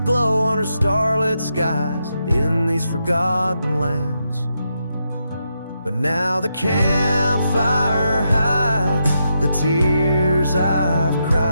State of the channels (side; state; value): both; inverted; correlation -0.83